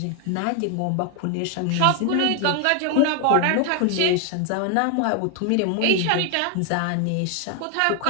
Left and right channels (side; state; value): both; different; correlation 0.00